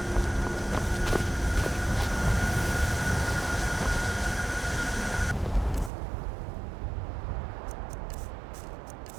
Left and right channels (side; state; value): left; drops out; at 5.9 s